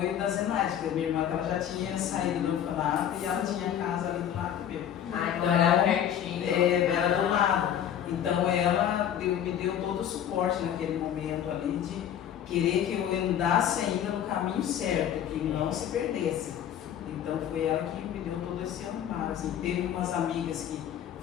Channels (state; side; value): quieter; right; 9.9 dB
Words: da Zenaide, porque a minha irmã ela já tinha saído do orfanato e ela tinha a casa ali do lado meu. Ah, então era pertinho. Era do lado. Então ela me deu todo o suporte naquele momento ali de querer que eu andasse ainda no caminho certo, que não se perdesse. Então foi ela que me deu todo esse amparo. Assim, teve umas amigas